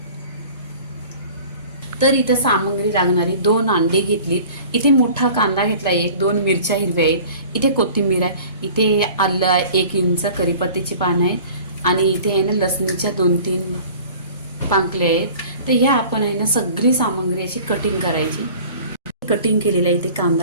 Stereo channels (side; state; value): both; inverted; correlation -0.45